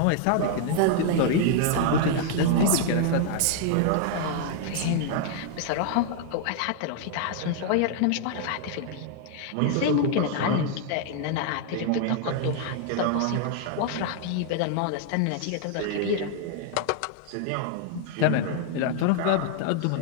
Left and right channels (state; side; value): different; both; correlation 0.00